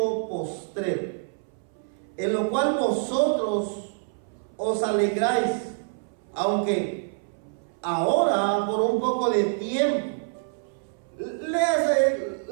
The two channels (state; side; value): silent; left; 61 dB below the other